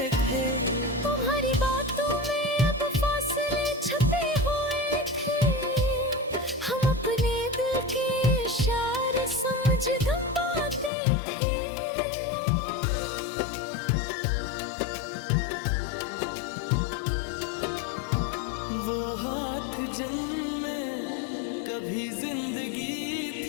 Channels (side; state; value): right; drops out; at 10.9 s